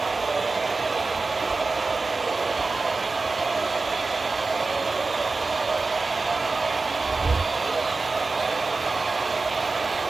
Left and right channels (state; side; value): quieter; left; 3.8 dB